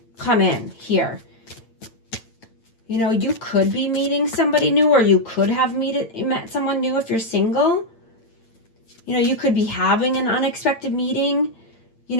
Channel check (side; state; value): right; late; 8.9 ms